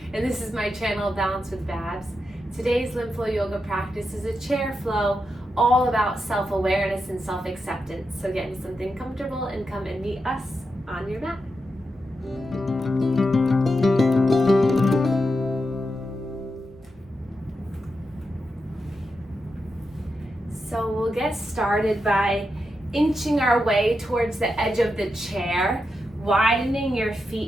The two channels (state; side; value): normal; both; correlation 0.87